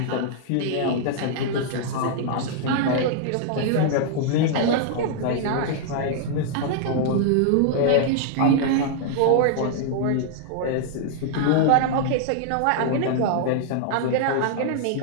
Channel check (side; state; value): both; different; correlation -0.01